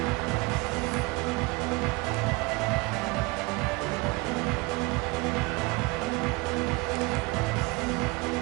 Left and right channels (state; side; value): quieter; left; 25.7 dB